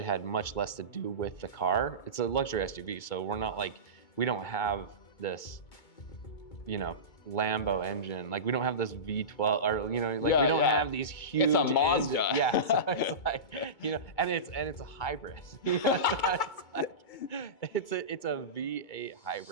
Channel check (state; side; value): late; right; 2.2 ms